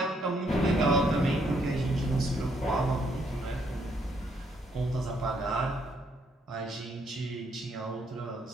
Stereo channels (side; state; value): both; normal; correlation 0.72